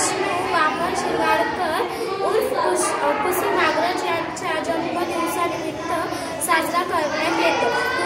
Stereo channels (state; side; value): identical; both; correlation 1.00